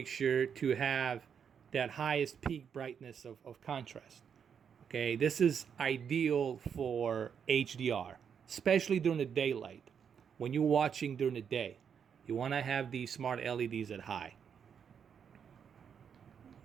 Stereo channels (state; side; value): quieter; left; 7.4 dB